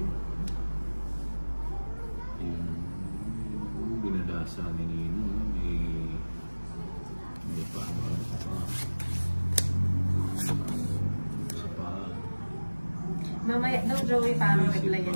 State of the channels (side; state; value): both; inverted; correlation -1.00